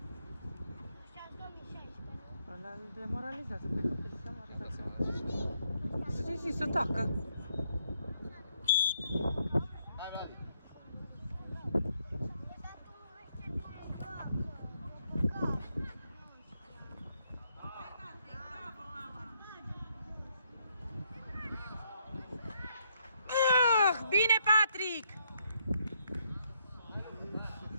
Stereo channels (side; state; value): both; inverted; correlation -0.74